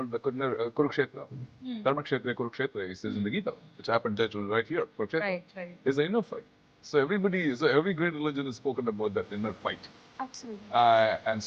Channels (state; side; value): identical; both; correlation 1.00